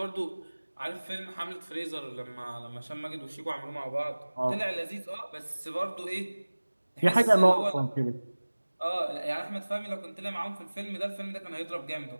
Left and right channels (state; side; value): inverted; both; correlation -1.00